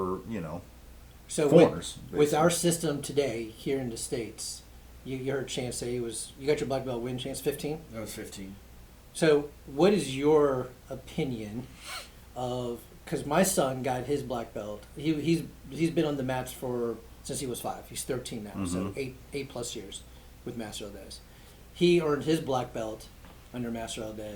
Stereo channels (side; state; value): both; identical; correlation 1.00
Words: So foreigners. with our system today here in the States, you heard Chance say you got your black belt win, Chance, 15? That was 15. So what is your opinion of, because my son got his black belt, he's been on the mats since he was 5. He's 13 now, so 8 plus years with Master Aldez. He earned his black belt under Master